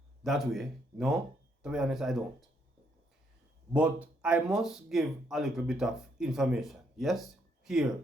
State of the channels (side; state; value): both; normal; correlation 0.73